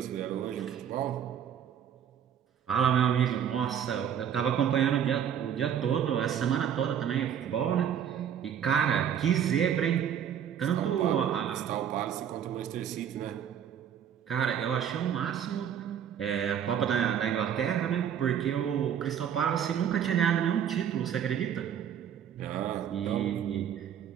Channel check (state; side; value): quieter; left; 9.0 dB